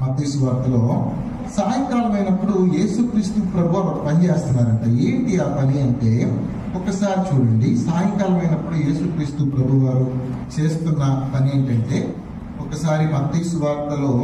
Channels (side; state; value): both; identical; correlation 1.00